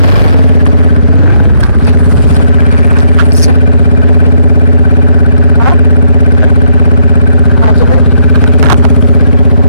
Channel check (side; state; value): both; inverted; correlation -0.73